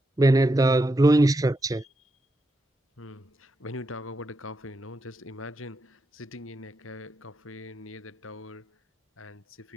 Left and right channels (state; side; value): normal; both; correlation 0.85